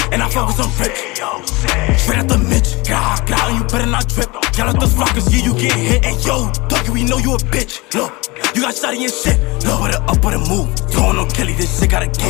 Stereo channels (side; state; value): right; quieter; 24.0 dB